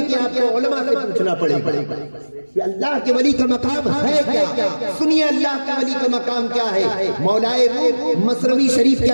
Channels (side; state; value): both; inverted; correlation -1.00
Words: آپ کو علماء سے پوچھنا پڑے گا کہ اللہ کے ولی کا مقام ہے کیا. سنیے اللہ کے ولی کا مقام کیا ہے. مولائے روم مثنوی شریف کے